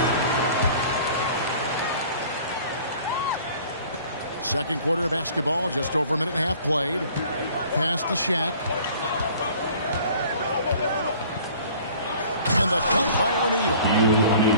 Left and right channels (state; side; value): inverted; both; correlation -0.50